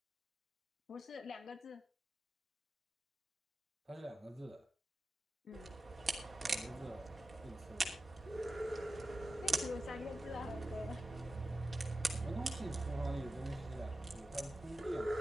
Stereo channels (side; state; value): both; normal; correlation 0.93